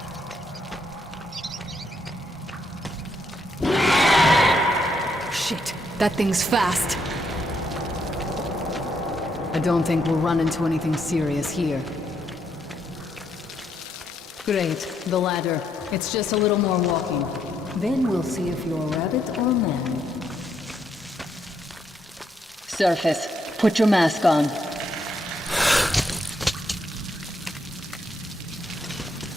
Shit, that thing's fast. I don't think we'll run into anything serious here. Great, the ladder. It's just a little more walking. Then we'll see if you're rabbit or man. Surface, put your mask on.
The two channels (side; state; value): both; normal; correlation 0.75